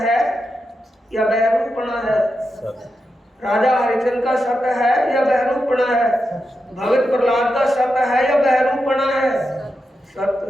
है या बहरूपना है? राजा हरिचंद्र का सत्य है या बहरूपना है? भगत प्रहलाद का सत्य है या बहरूपना है? सत्य।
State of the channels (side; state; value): both; normal; correlation 0.88